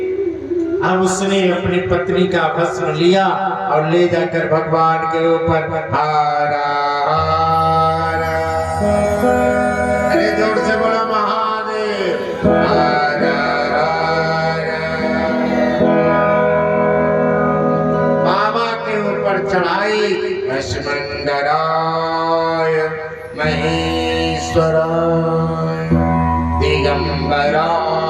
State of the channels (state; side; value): identical; both; correlation 1.00